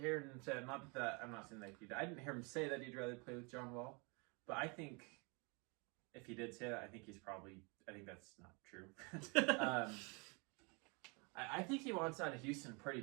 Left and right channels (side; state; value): left; quieter; 31.3 dB